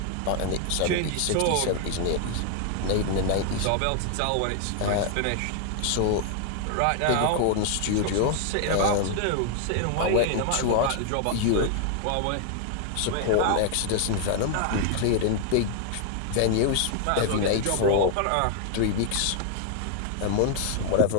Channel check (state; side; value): different; both; correlation 0.00